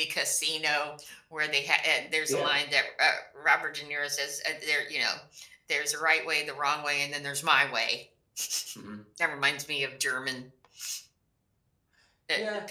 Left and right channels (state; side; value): identical; both; correlation 1.00